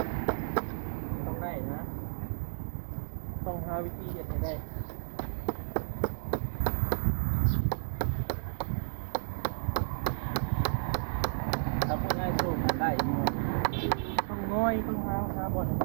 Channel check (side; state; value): left; silent; 56 dB below the other